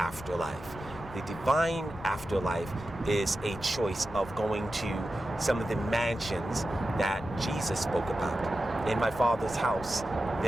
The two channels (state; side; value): noise; left; rumble, 15 dB below the sound